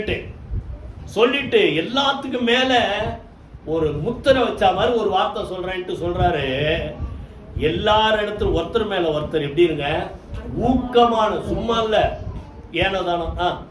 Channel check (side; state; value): both; identical; correlation 1.00